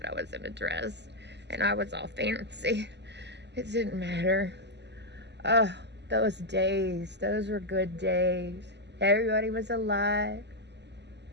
I was in a dress, and I was all fancy. It didn't matter. Oh, those days. Those were good days. Everybody was alive.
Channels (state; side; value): late; left; 0.50 ms